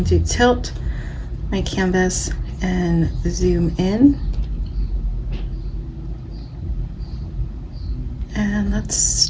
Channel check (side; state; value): both; identical; correlation 1.00